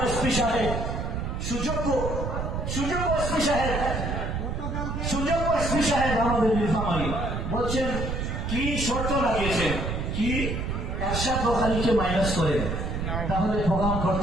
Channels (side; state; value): right; noise; rumble, 3 dB below the sound